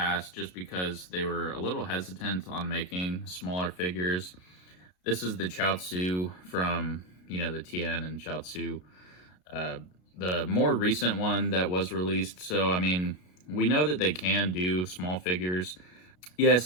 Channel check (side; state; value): right; late; 33 ms